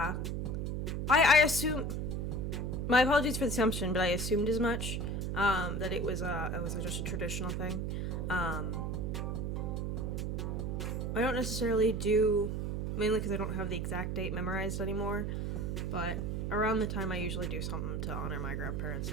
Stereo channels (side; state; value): right; noise; hum, 1 dB below the sound